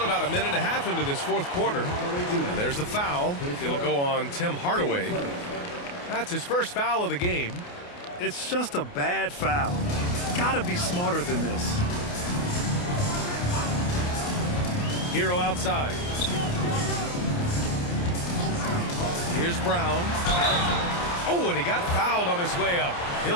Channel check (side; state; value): right; late; 28 ms